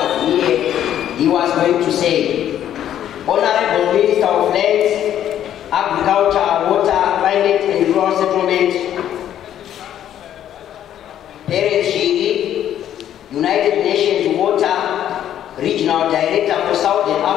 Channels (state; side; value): quieter; right; 10.8 dB